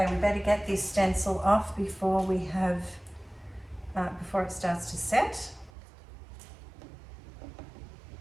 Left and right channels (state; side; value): drops out; left; at 5.7 s